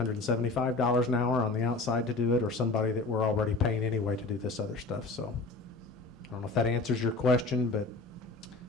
an hour on the outside to do it, or somebody that we're already paying anyway to do this other stuff. So I don't know if that answers your question, but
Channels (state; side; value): quieter; right; 3.5 dB